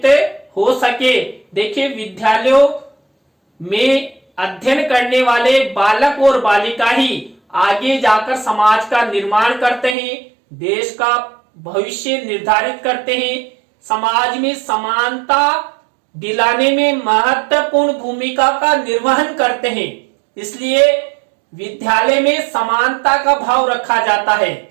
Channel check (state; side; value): drops out; left; at 10.0 s